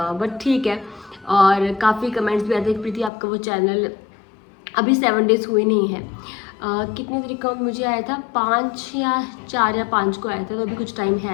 ठीक है। और काफ़ी कमेंट्स भी आते हैं प्रीति आपका वो चैनल अभी 7 डेज़ हुए नहीं है। कितने तरीके का मुझे आया था, 5 या 4 या 5 को आया था, तो अभी कुछ टाइम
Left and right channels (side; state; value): right; drops out; at 3.1 s